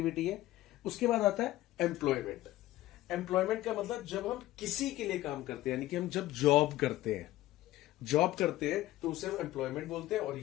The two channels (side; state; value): right; quieter; 15.8 dB